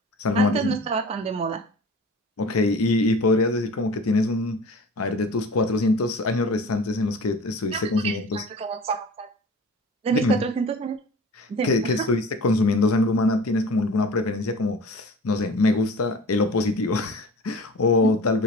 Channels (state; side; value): normal; both; correlation 0.41